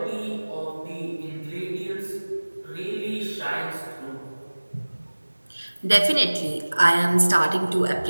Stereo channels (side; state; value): both; inverted; correlation -1.00